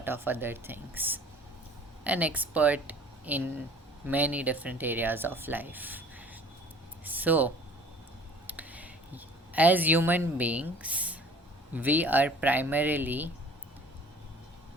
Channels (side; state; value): both; normal; correlation 0.48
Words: of other things. An expert in many different areas of life. So, as human beings, we are primarily